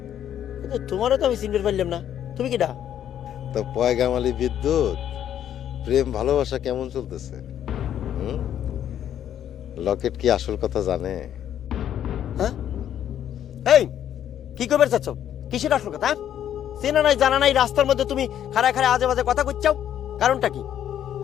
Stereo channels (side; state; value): right; quieter; 10.3 dB